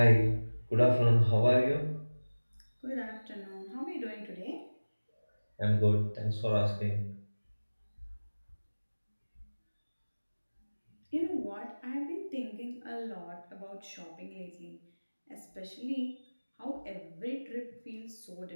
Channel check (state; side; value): inverted; both; correlation -1.00